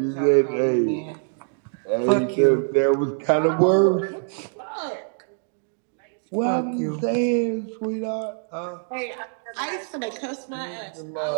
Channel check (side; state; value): left; silent; digital silence